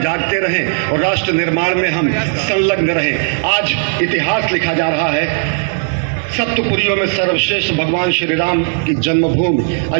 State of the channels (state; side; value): silent; left; 56 dB below the other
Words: जागते रहें और राष्ट्र निर्माण में हम संलग्न रहें। आज इतिहास लिखा जा रहा है। सप्तपुरियों में सर्वश्रेष्ठ भगवान श्री राम की जन्मभूमि